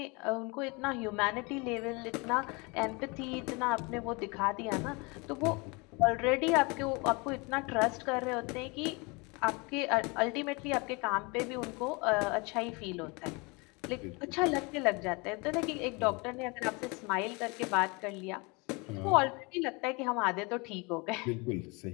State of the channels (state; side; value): quieter; right; 28.2 dB